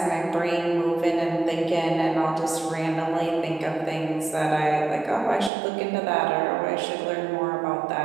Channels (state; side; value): drops out; left; at 5.5 s